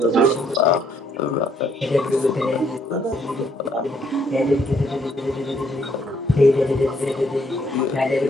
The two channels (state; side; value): normal; both; correlation 0.69